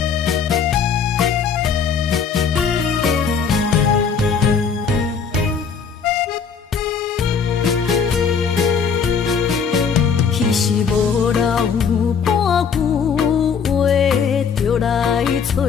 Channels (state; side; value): quieter; right; 6.3 dB